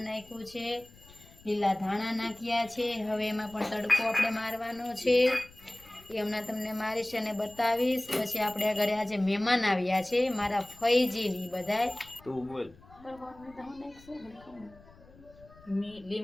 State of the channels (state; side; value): noise; left; rumble, 24 dB below the sound